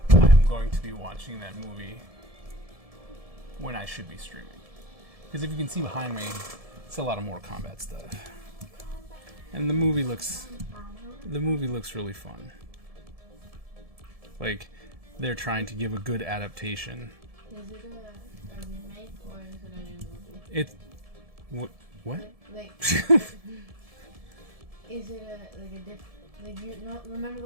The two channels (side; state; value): left; late; 1.7 ms